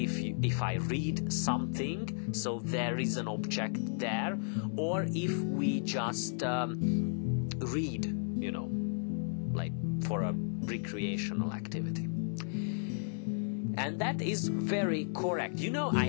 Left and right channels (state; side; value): silent; right; 55 dB below the other